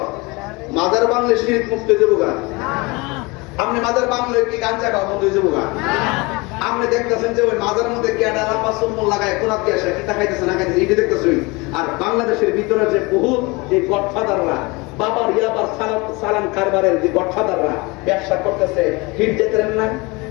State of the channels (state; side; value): quieter; right; 25.6 dB